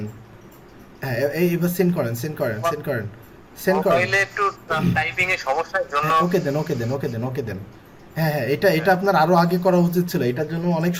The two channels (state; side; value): identical; both; correlation 1.00